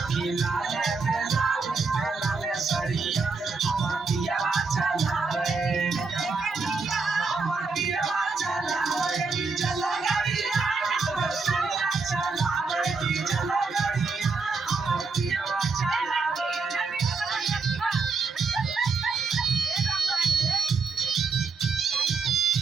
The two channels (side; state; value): left; quieter; 4.4 dB